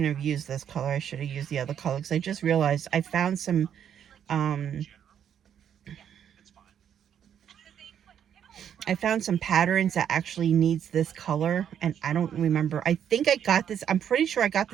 have used this color. I should have used the other color, because I just realized I found some, patterns that actually needs this color, and I don't remember. I think I got this. I'm pretty sure I got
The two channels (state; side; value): quieter; left; 9.0 dB